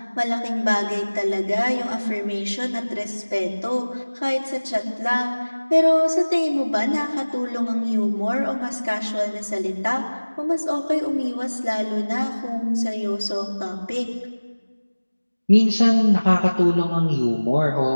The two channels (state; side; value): inverted; both; correlation -1.00